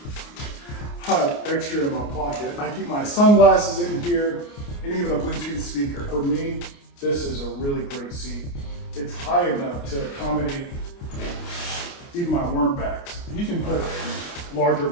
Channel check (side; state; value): right; late; 29 ms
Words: I have extra in my pocket. I keep my sunglasses in here and even a Bluetooth speaker. For me, this is a really great seat. It's high enough to accommodate even my worm bags. You can put larger